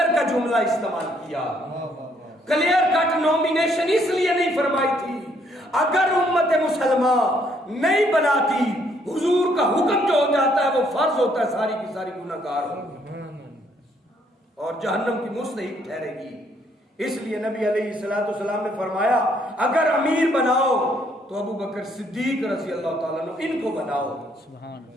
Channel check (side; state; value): both; normal; correlation 0.68